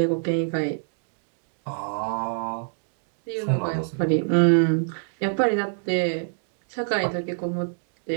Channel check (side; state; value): left; silent; digital silence